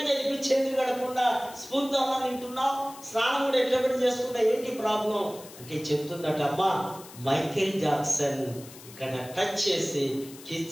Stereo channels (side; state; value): left; noise; hiss, 18 dB below the sound